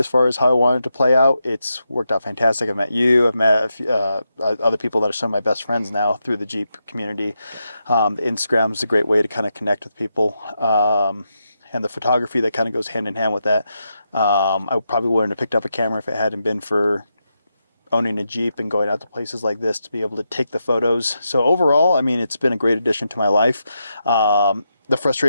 far as how I wanted to play out, it's worked out fantastic. I've met you. I've met a few, other people that are some of my best friends now through the Jeep community. Instagram is a great way to kind of connect with people. And the photography that kind of goes hand in hand with that. I probably wouldn't have picked up a camera if it hadn't been for owning a Jeep and going out to places like this to be able to take the photos. So overall, I mean, it's been a great addition to my life. The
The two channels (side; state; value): both; inverted; correlation -0.85